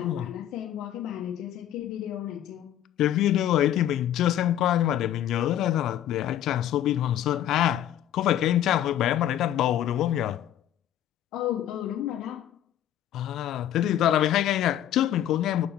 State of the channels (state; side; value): quieter; right; 11.6 dB